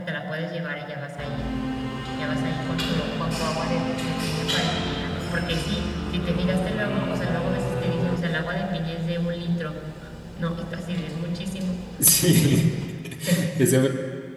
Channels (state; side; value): identical; both; correlation 1.00